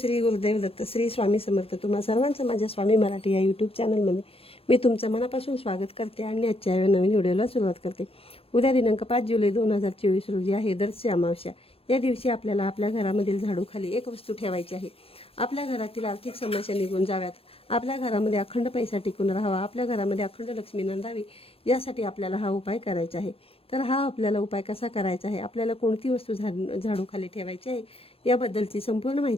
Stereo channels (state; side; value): late; right; 0.27 ms